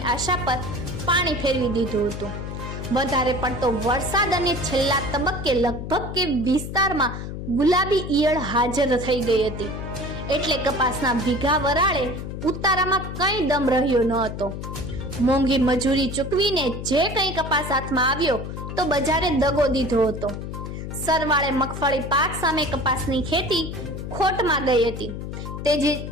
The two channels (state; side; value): noise; left; hum, 7 dB below the sound